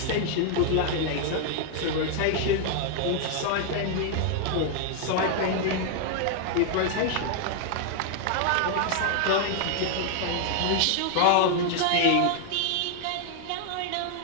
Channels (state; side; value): different; both; correlation 0.00